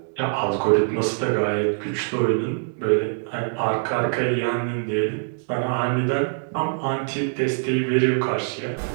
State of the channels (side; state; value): left; silent; 63 dB below the other